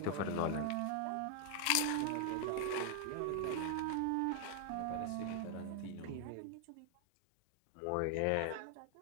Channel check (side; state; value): both; different; correlation 0.00